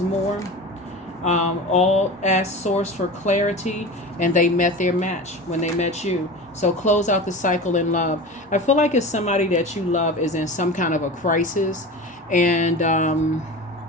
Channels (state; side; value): normal; both; correlation 0.31